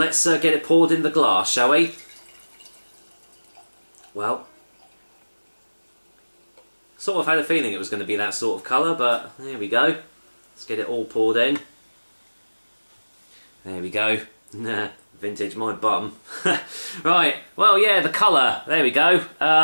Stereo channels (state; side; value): inverted; both; correlation -1.00